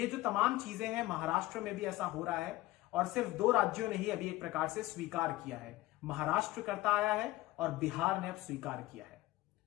जो तमाम चीजें हैं, महाराष्ट्र में भी ऐसा हो रहा है और सिर्फ 2 राज्यों ने ही अभी एक प्रकार से स्वीकार किया है। महाराष्ट्र करता आया है और बिहार ने अब स्वीकार किया है।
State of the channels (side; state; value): right; quieter; 17.8 dB